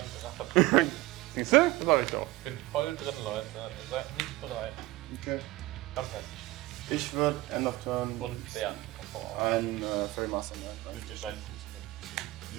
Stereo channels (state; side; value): quieter; left; 19.1 dB